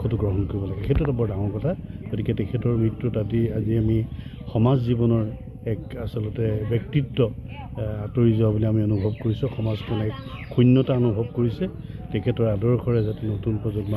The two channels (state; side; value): identical; both; correlation 1.00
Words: গ্ৰহণ কৰিব লাগে, সেইটো এটা বৰ ডাঙৰ কথা। গতিকে তেখেতৰ মৃত্যুত আজি আমি সমাজ জীৱনৰ এক আচলতে ব্যক্তিত্ব আঁতৰি যোৱা বুলি আমি অনুভৱ কৰিছোঁ। সমাজখনে এক শূন্যতা অনুভৱ কৰিছে। তেখেতৰ আদৰ্শৰে যাতে নতুন প্ৰজন্ম